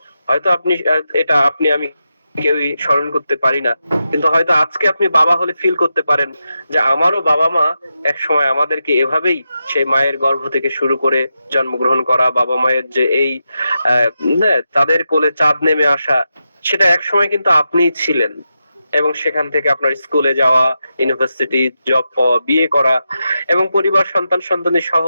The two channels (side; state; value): both; inverted; correlation -0.88